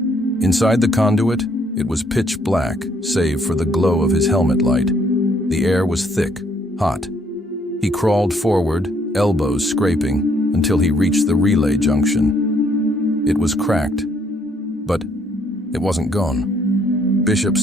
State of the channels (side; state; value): both; normal; correlation 0.68